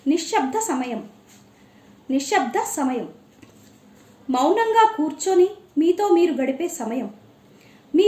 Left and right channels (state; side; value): identical; both; correlation 1.00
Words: నిశ్శబ్ద సమయం. నిశ్శబ్ద సమయం మౌనంగా కూర్చొని మీతో మీరు గడిపే సమయం.